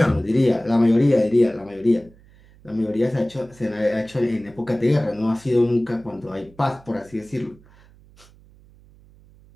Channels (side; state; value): right; noise; hum, 27 dB below the sound